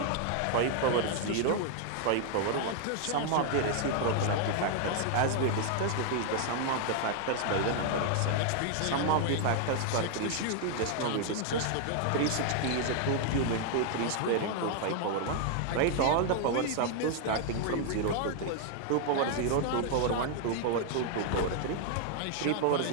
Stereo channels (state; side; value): different; both; correlation 0.00